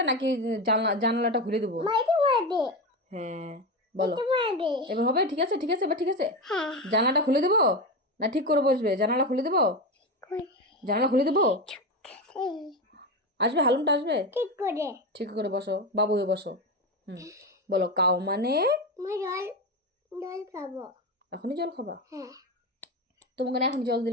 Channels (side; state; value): both; normal; correlation 0.18